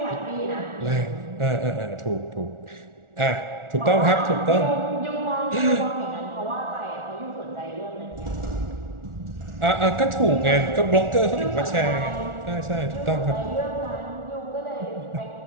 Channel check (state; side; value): late; left; 1.4 ms